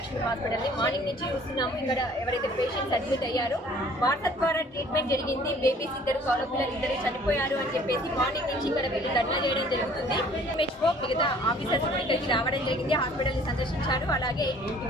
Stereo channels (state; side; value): normal; both; correlation 0.54